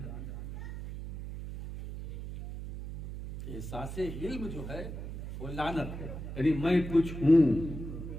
احساس علم جو ہے وہ لعنت ہے، یعنی میں کچھ ہوں،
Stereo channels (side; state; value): right; noise; hum, 8 dB below the sound